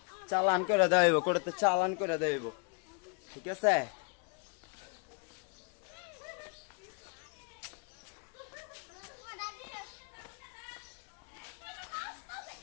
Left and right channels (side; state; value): right; quieter; 35.9 dB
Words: চালান করে দেওয়া হইব, কোর্টেতে চালান করে দেওয়া হইব, ঠিক আছে?